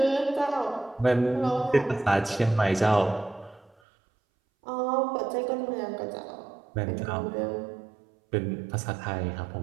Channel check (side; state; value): left; drops out; at 3.8 s